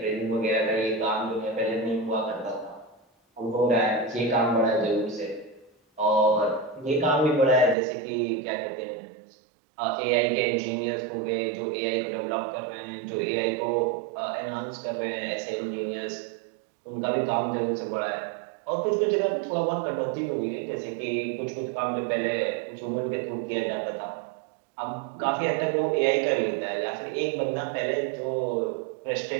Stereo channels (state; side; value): drops out; left; at 7.8 s